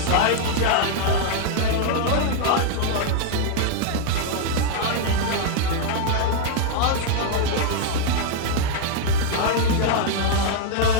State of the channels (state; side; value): different; both; correlation -0.01